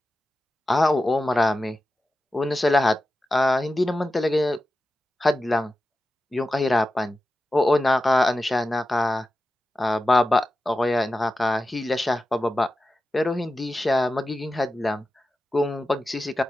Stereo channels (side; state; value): both; normal; correlation 0.92